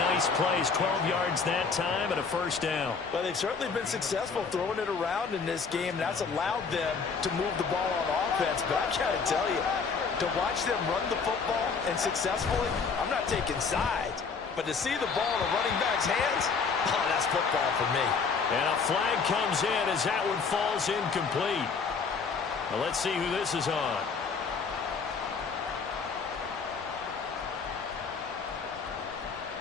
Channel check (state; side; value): quieter; right; 5.2 dB